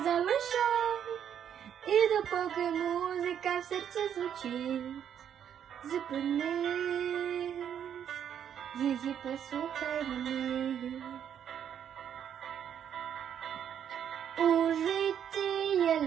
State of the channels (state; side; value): quieter; left; 9.0 dB